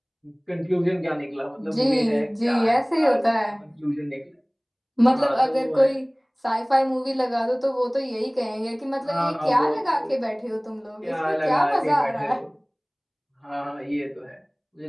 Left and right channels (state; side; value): identical; both; correlation 1.00